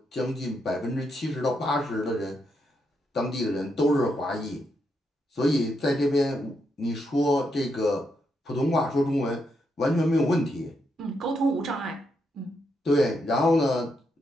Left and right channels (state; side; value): normal; both; correlation 0.80